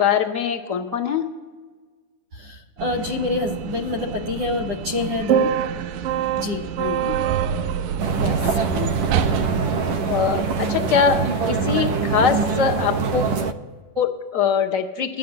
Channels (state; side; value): late; left; 9.8 ms